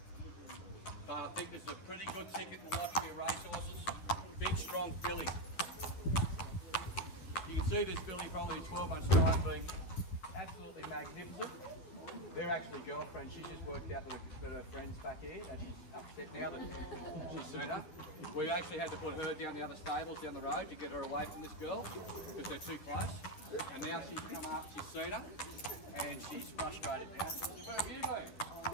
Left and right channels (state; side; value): late; right; 10 ms